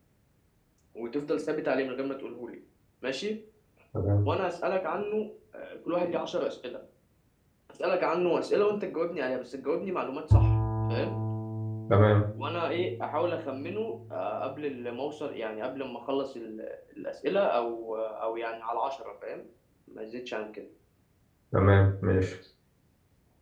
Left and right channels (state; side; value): identical; both; correlation 1.00